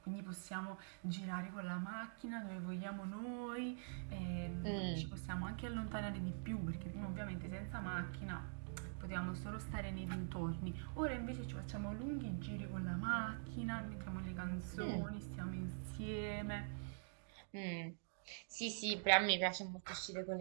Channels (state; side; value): silent; left; digital silence